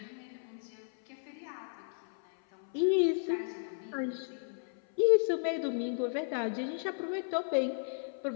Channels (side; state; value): right; silent; 55 dB below the other